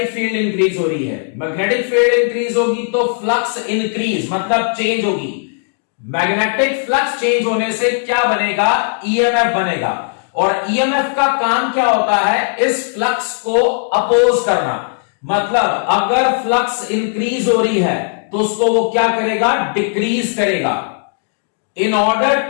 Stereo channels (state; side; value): silent; right; digital silence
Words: फील्ड इंक्रीज हो रही है, मैग्नेटिक फील्ड इंक्रीज होगी तो फ्लक्स इंक्रीज मतलब चेंज होगी। मैग्नेटिक फ्लक्स चेंज होने से क्या बनेगा, ईएमएफ बनेगा। और ईएमएफ का काम क्या होता है, इस फ्लक्स को अपोज करना। मतलब अगर फ्लक्स इंक्रीज हो रही है तो उसको वो क्या करेगा, डिक्रीज करेगा। In order